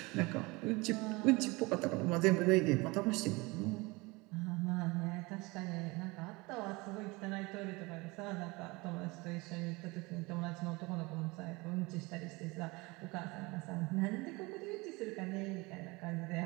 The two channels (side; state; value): left; quieter; 24.4 dB